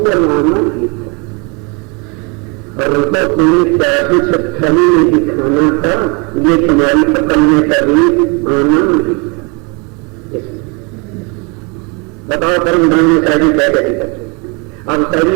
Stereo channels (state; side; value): quieter; left; 30.9 dB